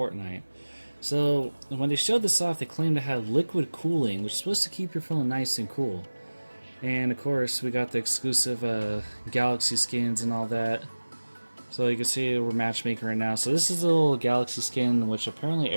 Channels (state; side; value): inverted; both; correlation -1.00